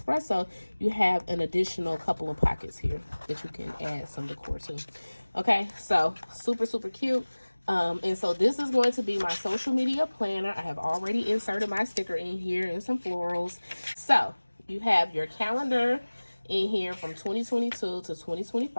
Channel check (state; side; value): inverted; both; correlation -1.00